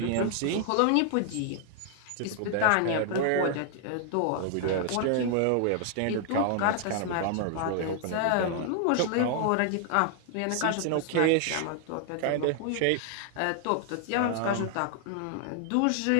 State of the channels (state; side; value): different; both; correlation 0.00